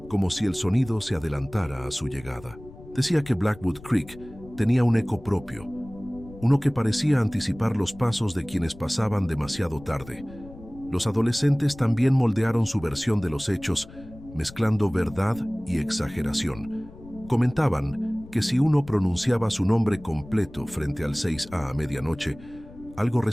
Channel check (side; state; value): left; noise; rumble, 19 dB below the sound